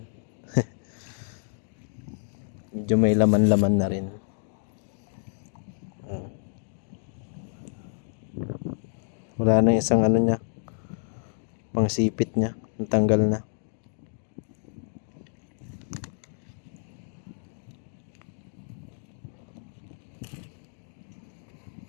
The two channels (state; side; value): silent; right; digital silence